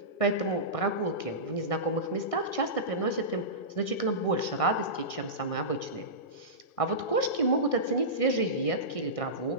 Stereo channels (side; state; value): right; late; 1.6 ms